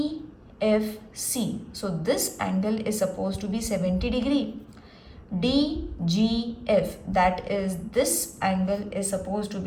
so this angle is supposed to be 70 degree. DGF, that is this angle is supposed to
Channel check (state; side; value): identical; both; correlation 1.00